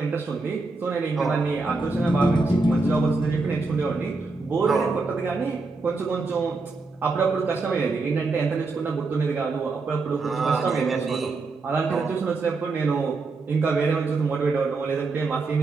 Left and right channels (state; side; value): quieter; left; 3.8 dB